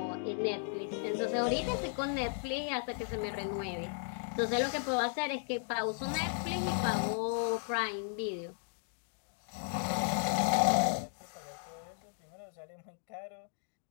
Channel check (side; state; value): right; silent; 54 dB below the other